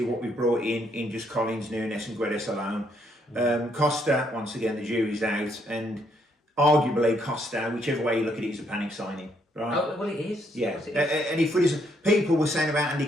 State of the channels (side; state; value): both; normal; correlation 0.72